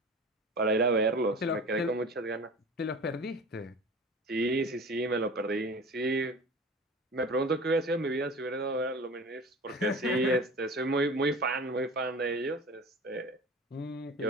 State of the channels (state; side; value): normal; both; correlation 0.38